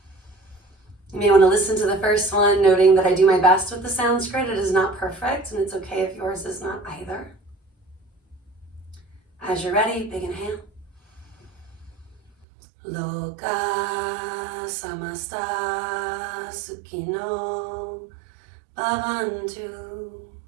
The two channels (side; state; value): left; drops out; at 12.3 s